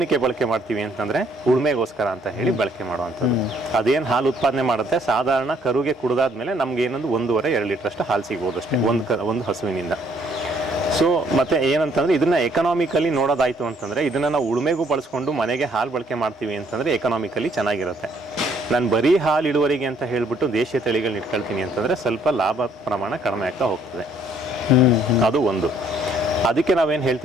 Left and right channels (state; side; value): normal; both; correlation 0.65